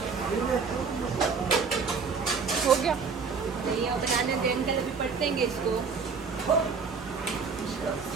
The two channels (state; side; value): quieter; left; 5.3 dB